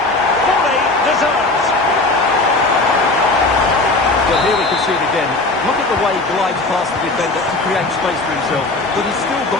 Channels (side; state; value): right; quieter; 3.1 dB